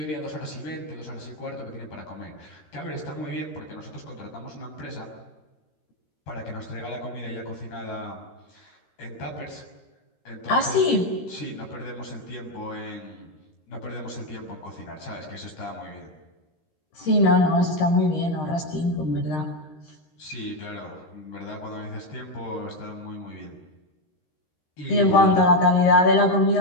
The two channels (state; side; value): late; right; 13 ms